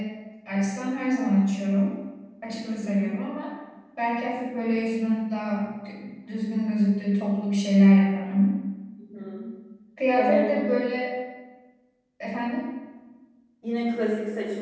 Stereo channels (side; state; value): both; identical; correlation 1.00